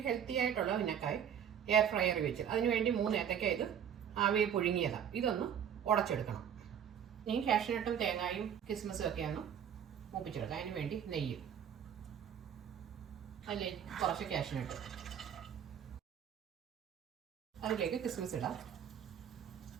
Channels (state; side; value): quieter; left; 8.7 dB